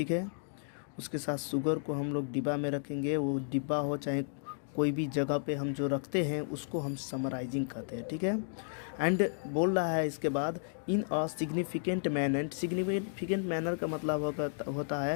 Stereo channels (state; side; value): silent; right; digital silence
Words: है। उसके साथ शुगर को हम लोग डिब्बा में रखेंगे, वो डिब्बा हो चाहे कोई भी जगह पे हम जो रखते हैं उसको हम समराइजिंग कहते हैं, ठीक है। एंड बोल रहा है इसके बाद in a significant manner. Significant manner का मतलब होता